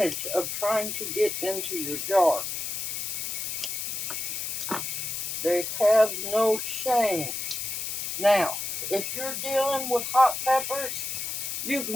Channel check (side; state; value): left; noise; hiss, 3 dB below the sound